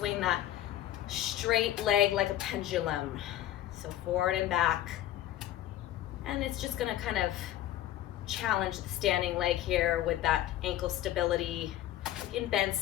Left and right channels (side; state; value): right; quieter; 13.1 dB